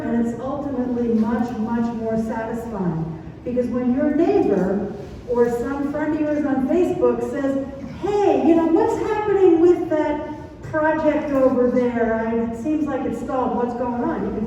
it's ultimately much, much more satisfying. Because when your neighbor or some friend of yours on Facebook says, hey, you know, what's happening with that project over there? It seems like it's stalled. What's going on? You can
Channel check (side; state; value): both; identical; correlation 1.00